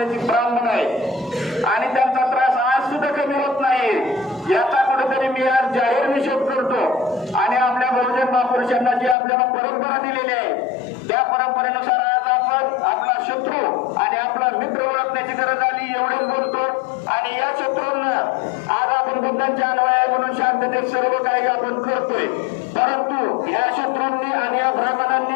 ब्राह्मण आहे आणि त्यांचा त्रास आज सुद्धा कमी होत नाही। याचा कुठेतरी मी आज जाहीर निषेध करतो। आणि आपल्या बहुजन महापुरुषांना जी आपल्याला परंपरा दिलेली आहे त्या परंपरेनुसार आज आपण आपला शत्रू आणि आपला मित्र ओळखण्याची गरज आली एवढेच बोलतो। आणि या शत्रूंना आज आपण बुद्धांच्या अनुयायी म्हणून शांततेत सर्व काही आपण करतोय, परंतु या शत्रूंनी आणि या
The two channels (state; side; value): drops out; right; at 9.2 s